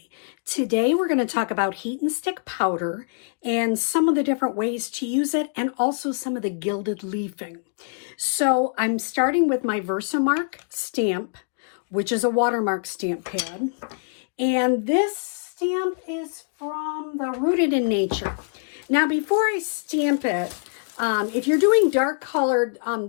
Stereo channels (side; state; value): right; silent; digital silence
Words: Today we're going to talk about heat and stick powder and some of the different ways to use it and also some of the gilded leafing. So I'm starting with my Versamark stamp, which is a watermark stamp pad. And this stamp is from the Rooted in Nature. Now before I stamp it, if you're doing dark colored,